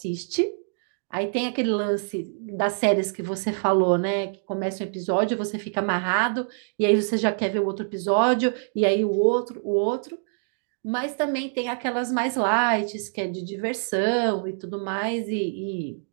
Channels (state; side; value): silent; left; digital silence